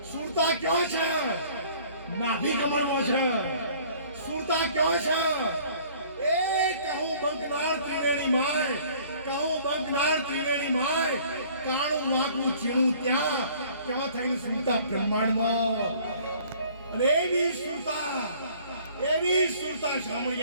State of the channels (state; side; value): inverted; both; correlation -0.54